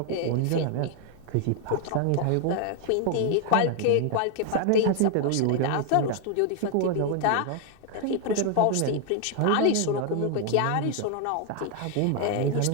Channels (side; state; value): both; different; correlation 0.00